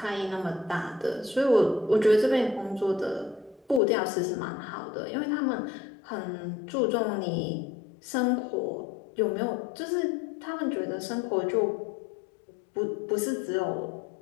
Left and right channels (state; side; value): drops out; right; at 3.8 s